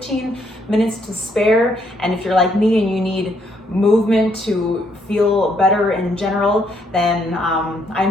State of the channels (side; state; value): both; normal; correlation 0.72